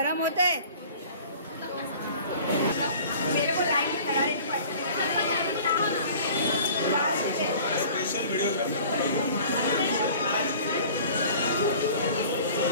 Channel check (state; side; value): inverted; both; correlation -0.46